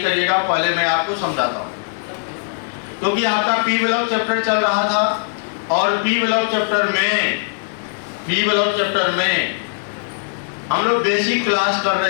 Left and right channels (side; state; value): right; silent; digital silence